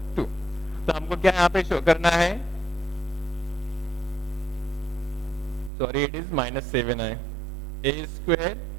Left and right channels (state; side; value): drops out; left; at 5.7 s